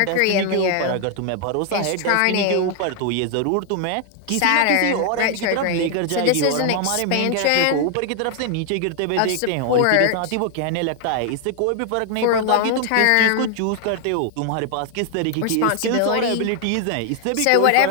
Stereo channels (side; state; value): both; different; correlation 0.00